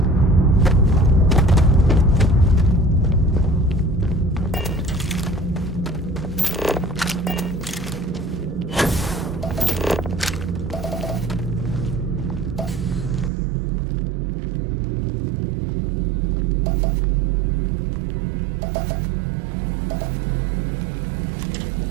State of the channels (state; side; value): drops out; left; at 13.3 s